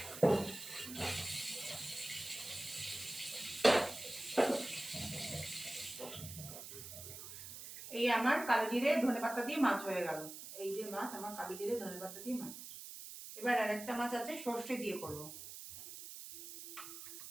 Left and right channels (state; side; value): noise; right; hiss, 11 dB below the sound